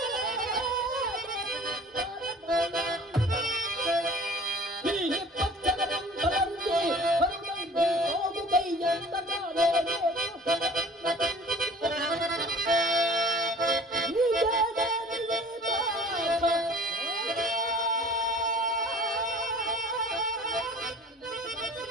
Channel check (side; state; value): both; normal; correlation 0.47